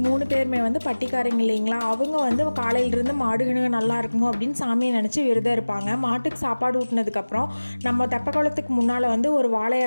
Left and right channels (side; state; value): both; inverted; correlation -1.00